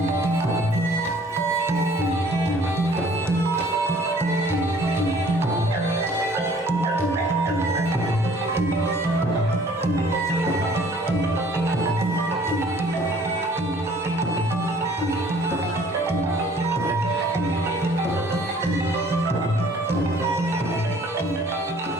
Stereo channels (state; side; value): normal; both; correlation 0.55